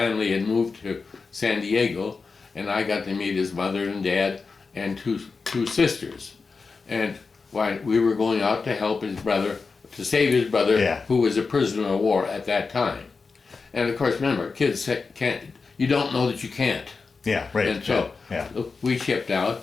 had moved to San Diego, and I got to meet his mother and dad and two sisters. And we were going out to help his brother, to save his brother, who was a prisoner of war at that time. And of course, remember, kids you don't know that you can't. Yeah, right. And so we shipped out,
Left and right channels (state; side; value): quieter; right; 4.6 dB